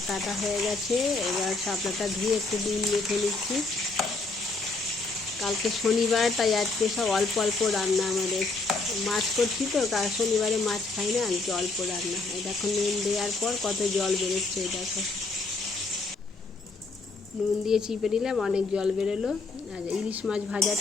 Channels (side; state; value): right; quieter; 3.7 dB